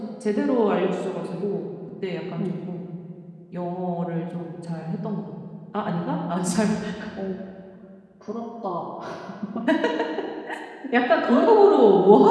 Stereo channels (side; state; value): both; identical; correlation 1.00